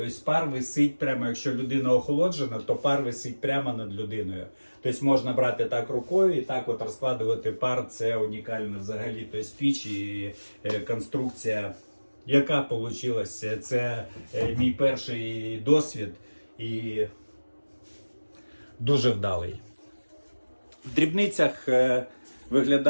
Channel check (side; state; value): both; inverted; correlation -1.00